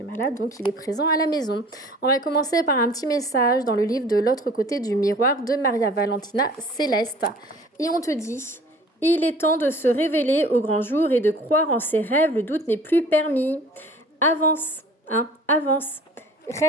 malade, donc il est présent à la maison. On va commencer par un petit message dans le livre de l'autre côté du miroir de Maria Valentina Céleste. Et on te dit... Il est temps de se révéler au grand jour et de croire en ses rêves. Le doute n'est plus permis. Avance, avance.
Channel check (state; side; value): normal; both; correlation 0.48